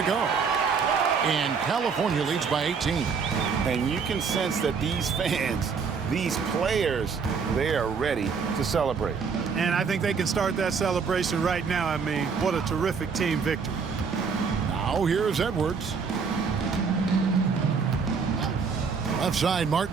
go. And California leads by 18. And you can sense that these fans, these players, they are ready to celebrate. And I think they can start that celebration right now. I mean, what a terrific team victory. Now here's Edwards. Left side,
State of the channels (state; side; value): quieter; left; 5.6 dB